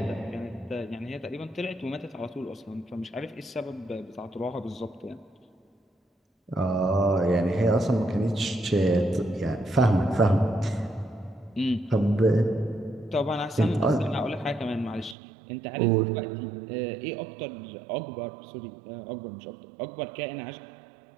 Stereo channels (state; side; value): drops out; left; at 15.2 s